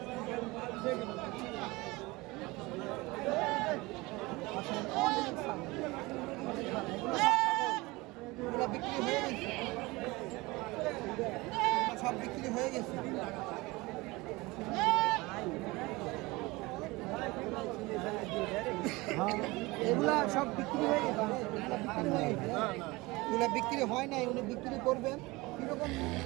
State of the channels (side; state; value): left; quieter; 22.5 dB